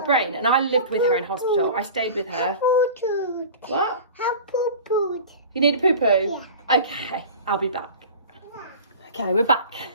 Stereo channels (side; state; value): both; inverted; correlation -0.37